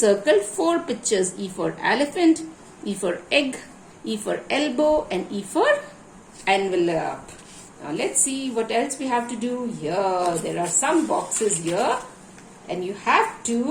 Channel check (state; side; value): identical; both; correlation 1.00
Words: 4 pictures. E for elephant, E for egg, E for elbow and E for envelope. Now let's see what else we have to do here. There are some boxes here and you have